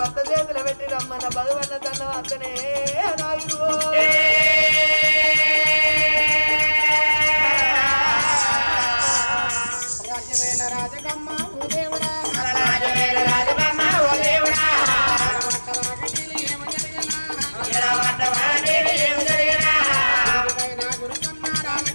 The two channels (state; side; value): inverted; both; correlation -1.00